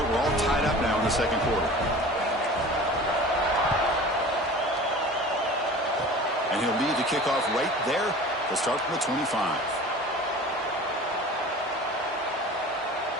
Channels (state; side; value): normal; both; correlation 0.40